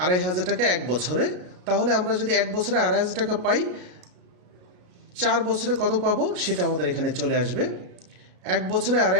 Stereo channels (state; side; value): late; left; 33 ms